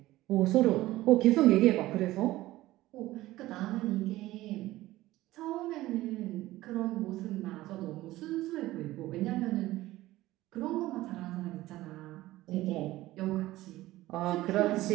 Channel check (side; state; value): left; quieter; 16.8 dB